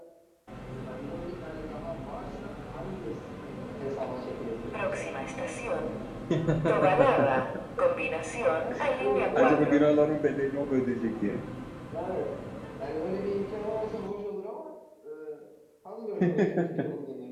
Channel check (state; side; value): identical; both; correlation 1.00